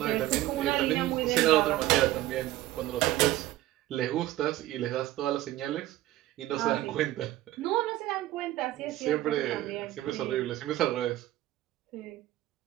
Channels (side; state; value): left; quieter; 15.2 dB